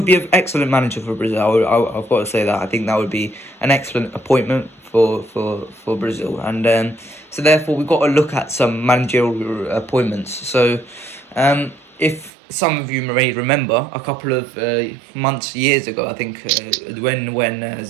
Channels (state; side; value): drops out; left; at 12.3 s